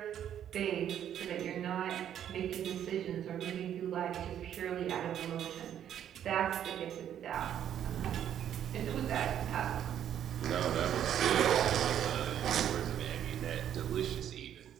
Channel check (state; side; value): quieter; left; 10.1 dB